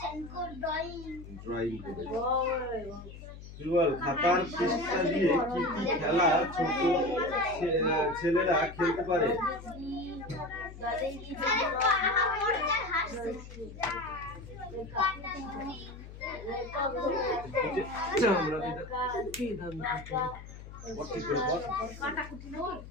ড্রয়িং করেছো। তুই বল, খাতার পৃষ্ঠা দিয়ে কি কি খেলা ছোট ছেলেরা খেলতে পারে?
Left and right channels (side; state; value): left; noise; hum, 14 dB below the sound